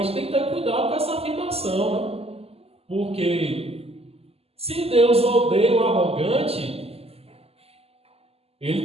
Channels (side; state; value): left; late; 0.29 ms